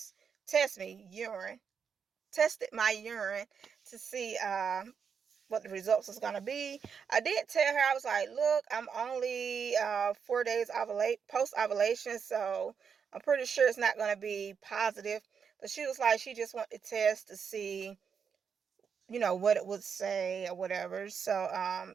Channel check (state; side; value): quieter; left; 6.6 dB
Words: me urine. Tested my urine to see what the results was going to be. I did tell her, I was like, look, I'm only 4 days post ovulation, so I'm pretty sure it's not going to be positive. But she was like, she just wanted to test to see, what it would say or whatever. So